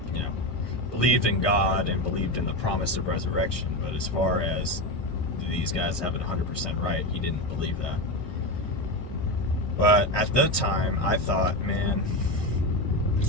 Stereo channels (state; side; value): late; right; 1.2 ms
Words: Believed in God and believed in the promise of resurrection, but as far as these guys have it 100% right, he didn't believe that. But at the time, I thought, man,